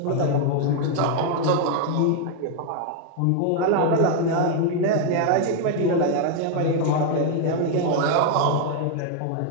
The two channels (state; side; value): different; both; correlation 0.00